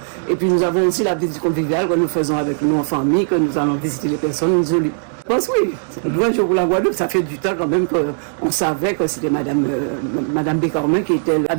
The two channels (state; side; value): silent; left; digital silence